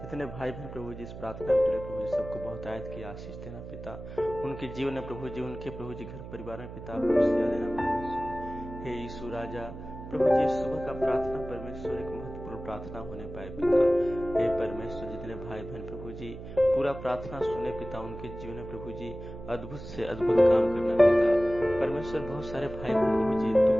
जितने भाई बहन प्रभु जी इस प्रार्थना के लिए प्रभु जी सबको बहुत आयत की आशीष देना पिता। उनके जीवन में प्रभु जी, उनके प्रभु जी घर परिवार में पिता खुशियाँ देना परमेश्वर। हे यीशु राजा प्रभु जी, सुबह का प्रार्थना परमेश्वर एक महत्वपूर्ण प्रार्थना होने पाए पिता। हे परमेश्वर, जितने भाई बहन प्रभु जी पूरा प्रार्थना सुने पिता, उनके जीवन में प्रभु जी अद्भुत से अद्भुत काम करना पिता। परमेश्वर, बहुत सारे भाई बहन प्रभु जी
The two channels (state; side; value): noise; right; hum, 12 dB below the sound